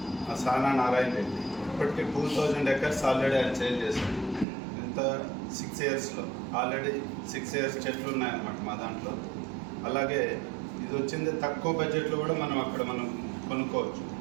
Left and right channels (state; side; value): drops out; left; at 4.5 s